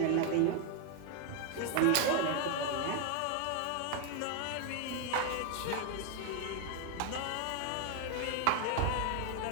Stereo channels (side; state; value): both; different; correlation 0.00